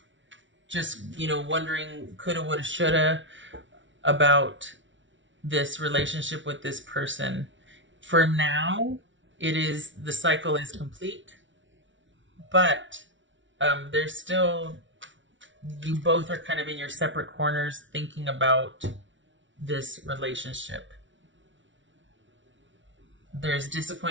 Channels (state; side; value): late; left; 0.55 ms